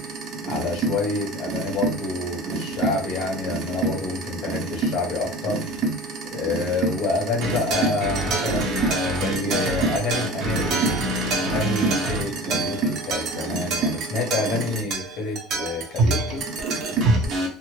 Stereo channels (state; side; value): normal; both; correlation 0.38